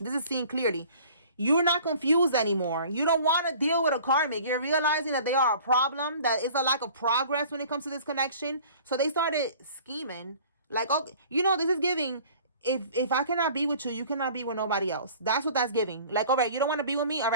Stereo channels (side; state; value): both; inverted; correlation -0.48